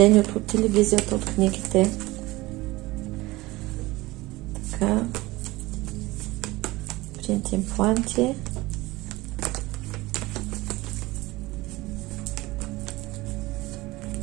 от телевизията, от книгите. Така. Принт импланти.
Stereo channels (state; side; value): quieter; left; 20.2 dB